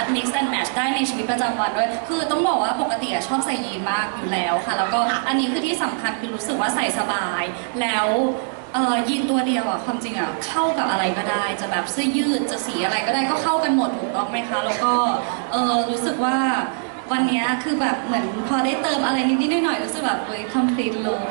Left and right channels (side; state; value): left; silent; digital silence